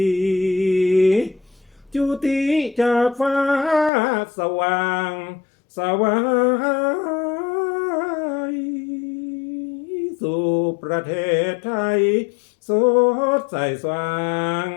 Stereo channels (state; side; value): drops out; right; at 3.9 s